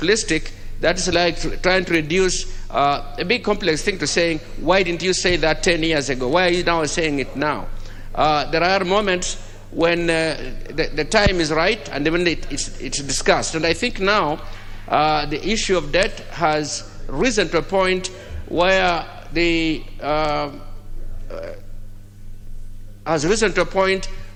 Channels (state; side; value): identical; both; correlation 1.00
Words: That is like trying to reduce a big complex thing to saying, why didn't you say that 10 years ago? Why are you now saying it now? There are moments when the time is right and when it's discussed. And I think now the issue of debt has risen to a point where